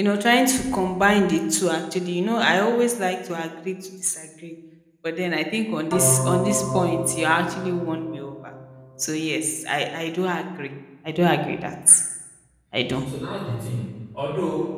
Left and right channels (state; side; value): identical; both; correlation 1.00